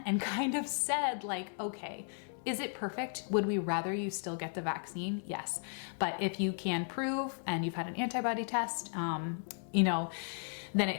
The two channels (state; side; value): silent; right; 54 dB below the other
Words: and kind of said okay, is it perfect? Would we rather you still get the vaccine? Yes. But if you can prove and you've had an antibody test, then